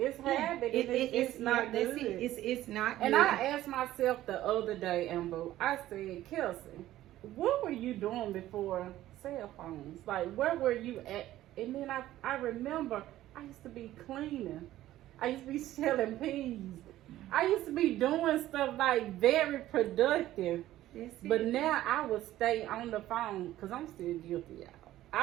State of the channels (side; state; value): left; quieter; 14.3 dB